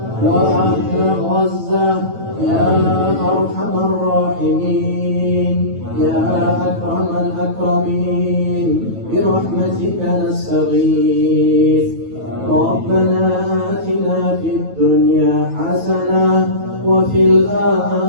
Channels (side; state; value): left; late; 9.2 ms